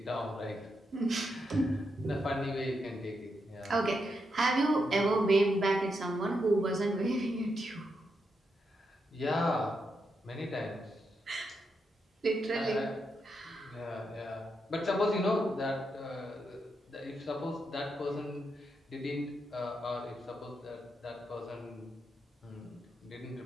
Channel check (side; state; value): both; normal; correlation 0.83